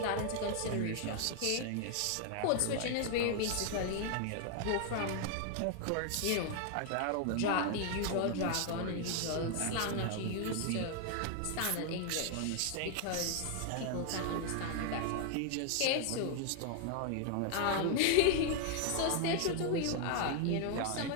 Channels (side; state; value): both; different; correlation 0.00